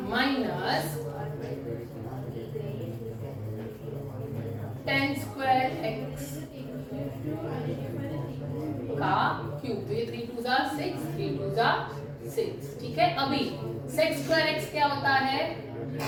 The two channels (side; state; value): both; identical; correlation 1.00